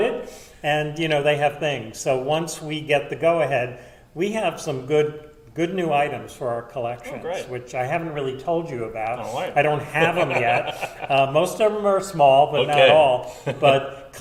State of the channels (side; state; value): both; identical; correlation 1.00